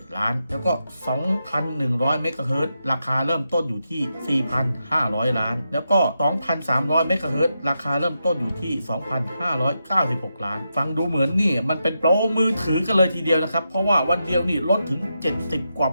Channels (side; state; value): both; inverted; correlation -0.86